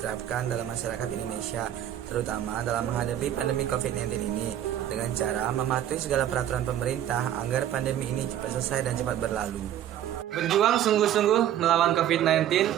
dalam masyarakat Indonesia, terutama dalam menghadapi pandemi COVID-19 ini, dengan cara mematuhi segala peraturan pemerintah agar pandemi ini cepat selesai dan cepat berlalu. Berjuang sungguh-sungguh melawan COVID-19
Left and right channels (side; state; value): left; quieter; 11.3 dB